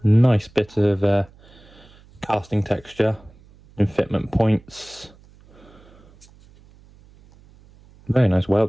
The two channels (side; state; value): right; noise; hum, 26 dB below the sound